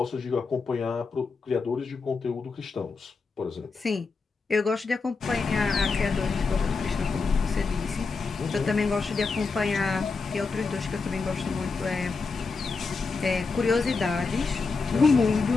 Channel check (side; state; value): right; quieter; 4.4 dB